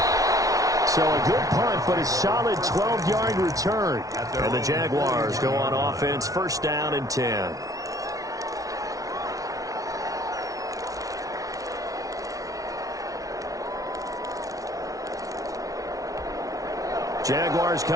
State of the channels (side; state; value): left; late; 0.17 ms